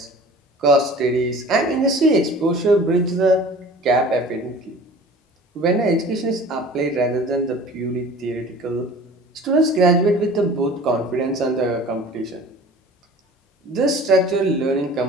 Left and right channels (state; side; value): normal; both; correlation 0.44